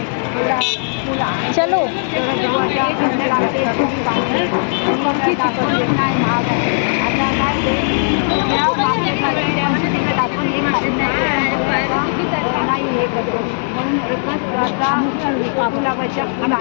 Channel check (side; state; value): right; silent; digital silence